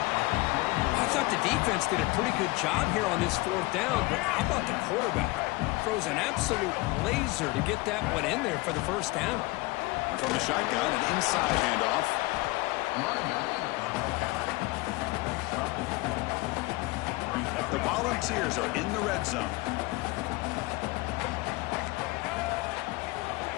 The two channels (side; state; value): right; quieter; 22.4 dB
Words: I thought the defense did a pretty good job here on this fourth down, but how about the quarterback? Throws an absolute laser to get that one in there for the first down. And from the shotgun, an inside handoff. The Volunteers are in the red zone.